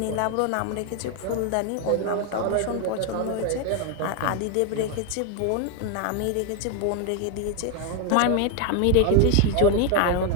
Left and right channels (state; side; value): different; both; correlation 0.01